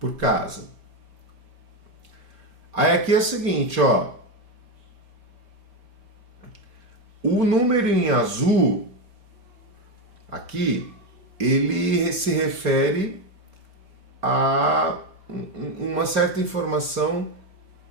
casa. Aí aqui é o seguinte, ó. O número em azul, aqui, ele se refere a uma certa informação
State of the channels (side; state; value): left; late; 5.1 ms